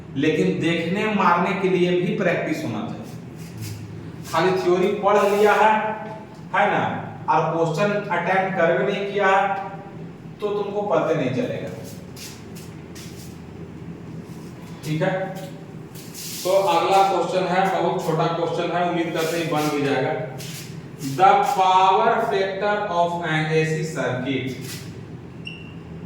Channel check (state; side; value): identical; both; correlation 1.00